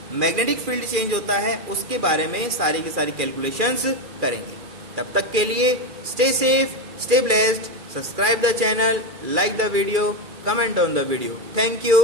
मैग्नेटिक फील्ड चेंज होता है उसके बारे में सारी की सारी कैलकुलेशंस करेंगे। तब तक के लिए stay safe, stay blessed, subscribe the channel, like the video, comment on the video. Thank you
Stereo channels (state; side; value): late; left; 2.4 ms